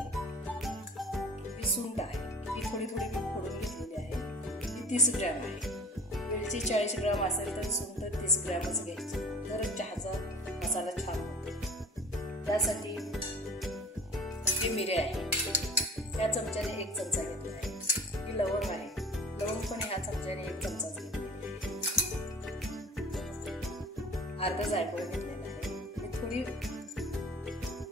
सुंठ आहे, ही थोडी थोडी मी फोडून घेतलेली आहे, ही 30 ग्रॅम आहे। वेलची 40 ग्रॅम असेल तर सुंठ 30 ग्रॅमच घ्यायची, तर चहाचा मसाला छान होतो। त्यासाठी ही मिरे आहे, त्या चमच्याने 1 चमचा घेतला आहे। ही लवंग आहे, लवंग पण ह्या चमच्याने 1 चमचाच घेतला। अर्धा जायफळ घेतलेला आहे, मी थोडी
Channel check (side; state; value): both; normal; correlation 0.44